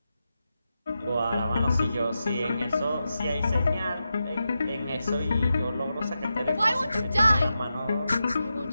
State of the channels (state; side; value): inverted; both; correlation -0.89